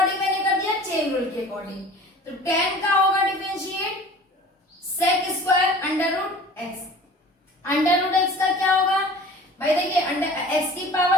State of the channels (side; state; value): both; normal; correlation 0.44